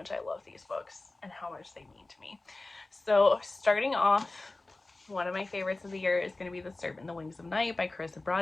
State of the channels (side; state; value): right; quieter; 3.1 dB